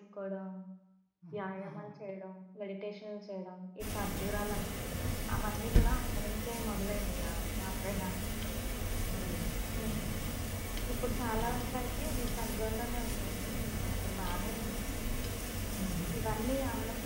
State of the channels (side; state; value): both; identical; correlation 1.00